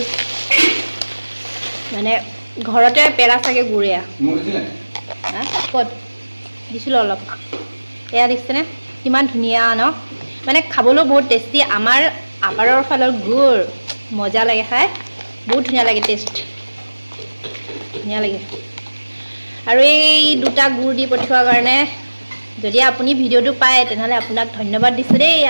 মানে ঘৰতে পেৰা চাগে গুড়। এয়া ক'ত দিছিলোঁ অলপ, এয়া দেখিছেনে কিমান ধুনীয়া ন? মানে খাবলৈও বহুত টেষ্টি। আমাৰ আপাৰৰ ফালৰ গুড় মজা লাগে খাই, বহুত ধুনীয়া লাগে, টেষ্ট ধুনীয়া লাগে। আৰু এই দুটা গুড় দি পঠিওৱাৰ কাৰণে যদি আপুনি ভিডিঅ'টো পায় তেনেহ'লে আপোনাক ধন্যবাদ দিছোঁ দেই।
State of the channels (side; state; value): both; inverted; correlation -1.00